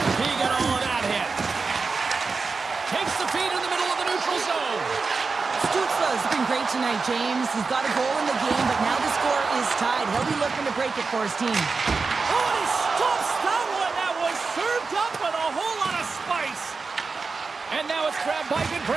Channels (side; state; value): left; quieter; 4.4 dB